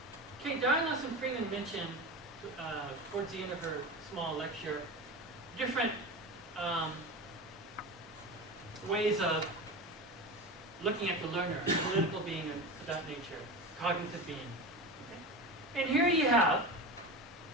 Diane and Freeman mentioned towards the end of her small lecture different ways of looking at the learner, political being of that nature, cognitive being. Okay? And here you have,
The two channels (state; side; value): normal; both; correlation 0.25